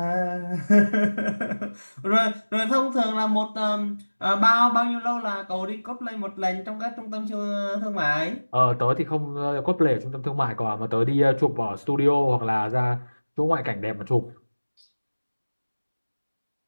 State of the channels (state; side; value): inverted; both; correlation -1.00